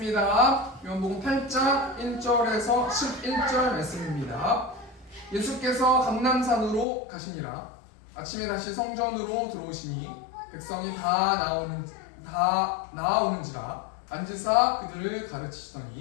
요한복음 8장 1절에서 11절 말씀입니다. 예수께서 감람산으로 가시니라. 아침에 다시 성전으로 들어오시니 백성이 다 나아오는지라 앉으사 그들을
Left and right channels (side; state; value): right; drops out; at 6.9 s